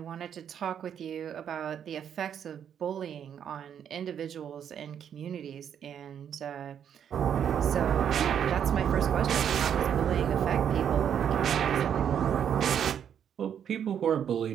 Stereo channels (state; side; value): quieter; left; 8.7 dB